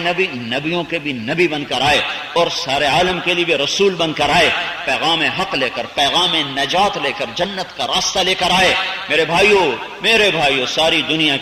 نبیوں کے بھی نبی بن کر آئے اور سارے عالم کے لیے بھی رسول بن کر آئے، پیغام حق لے کر، پیغام نجات لے کر، جنت کا راستہ لے کر آئے۔ میرے بھائیوں ساری دنیا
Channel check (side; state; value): both; identical; correlation 1.00